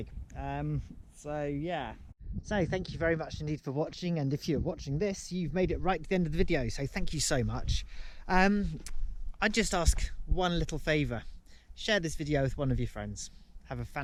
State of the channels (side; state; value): both; identical; correlation 1.00